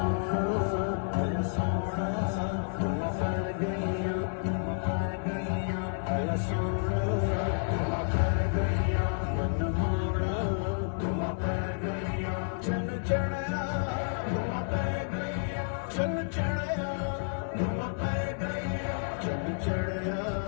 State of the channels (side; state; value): right; silent; digital silence